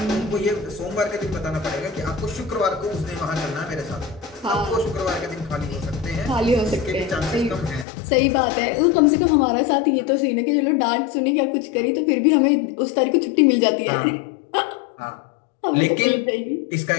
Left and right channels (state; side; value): drops out; right; at 7.9 s